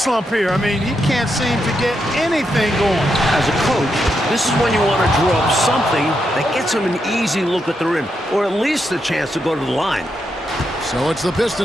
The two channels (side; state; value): both; normal; correlation 0.83